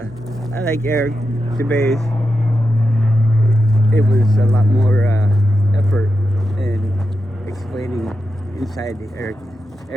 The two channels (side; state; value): both; normal; correlation 0.88